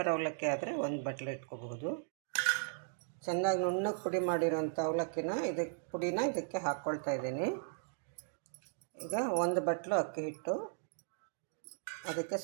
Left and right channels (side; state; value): left; silent; digital silence